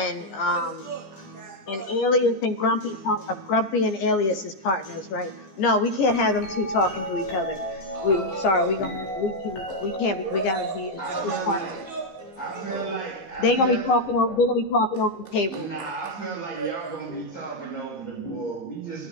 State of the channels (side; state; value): right; late; 15 ms